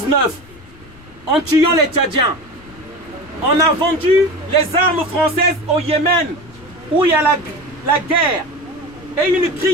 en tuant les Tchadiens. On a vendu les armes françaises au Yémen où il y a la guerre et une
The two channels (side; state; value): left; noise; rumble, 23 dB below the sound